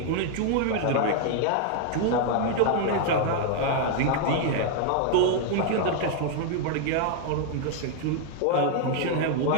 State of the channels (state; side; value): different; both; correlation 0.00